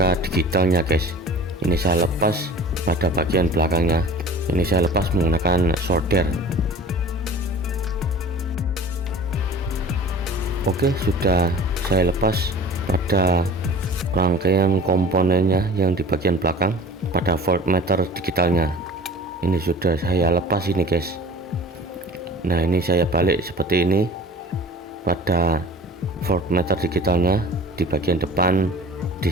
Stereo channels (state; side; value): normal; both; correlation 0.42